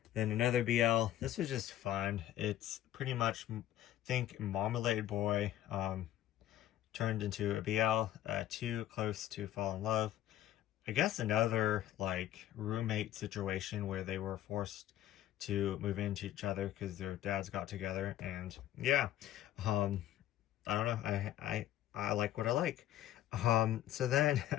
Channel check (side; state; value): right; quieter; 12.7 dB